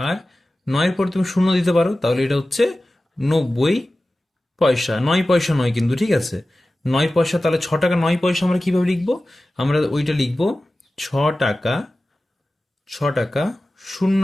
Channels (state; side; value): normal; both; correlation 0.95